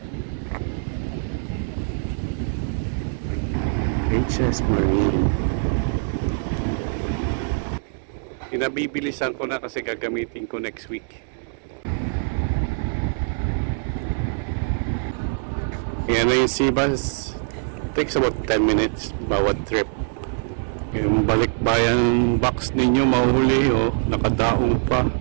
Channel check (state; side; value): silent; left; 63 dB below the other